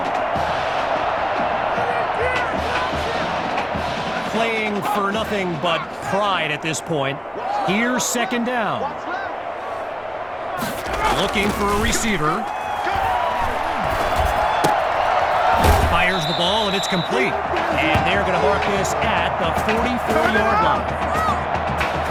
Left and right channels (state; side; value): identical; both; correlation 1.00